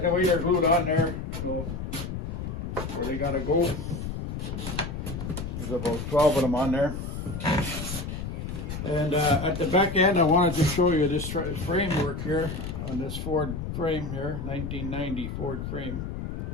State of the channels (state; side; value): noise; left; rumble, 5 dB below the sound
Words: they're glued on there, so where they gotta go. There's about 12 of them on there. And at the back end, I wanted to show you this framework here on this Ford frame here, 1990 Ford frame.